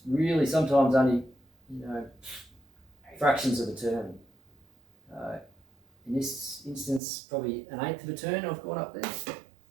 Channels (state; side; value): drops out; left; at 7.0 s